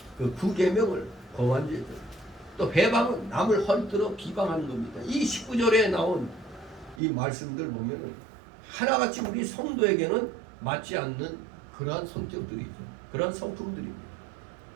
9계명을 범한 죄죠. 또 회방은 남을 헐뜯어 비방하는 겁니다. 이 19절에 나온 이 말씀들 보면은 하나같이 우리 성도에게는 맞지 않는 그러한 성격들이죠. 그러한 성품들입니다.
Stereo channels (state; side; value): drops out; left; at 7.0 s